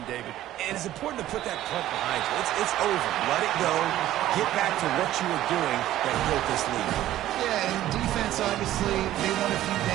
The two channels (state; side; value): quieter; left; 13.7 dB